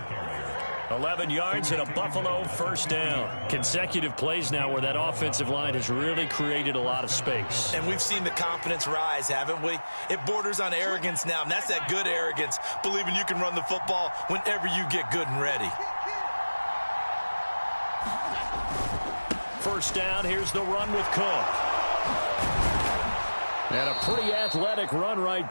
11 yards and a Buffalo first down. Consecutive plays now where that offensive line has really created a lot of space. And we've seen the confidence rise, haven't we? It borders on arrogance now, and that's that good arrogance, believing you can run the football whenever you get good and ready. First down, here's the run with Cook. And a pretty athletic run right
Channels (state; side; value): inverted; both; correlation -1.00